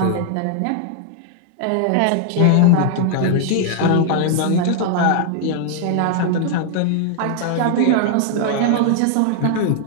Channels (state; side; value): different; both; correlation 0.00